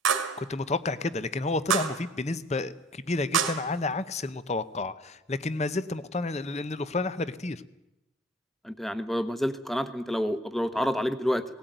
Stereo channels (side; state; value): both; normal; correlation 0.54